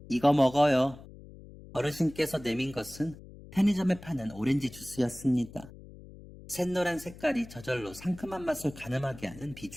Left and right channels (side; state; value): left; noise; hum, 18 dB below the sound